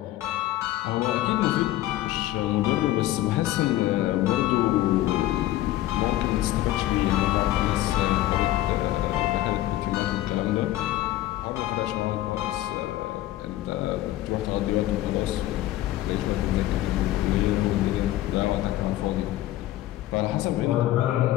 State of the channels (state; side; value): quieter; right; 15.0 dB